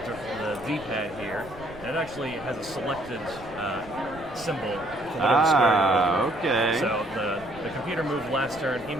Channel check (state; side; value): noise; right; rumble, 20 dB below the sound